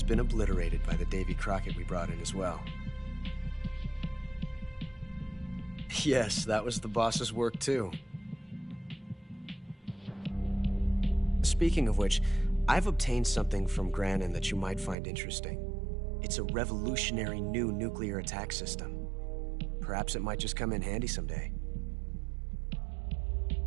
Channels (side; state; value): left; drops out; at 15.0 s